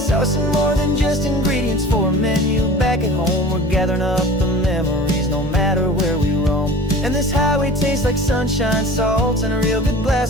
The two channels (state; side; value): normal; both; correlation 0.41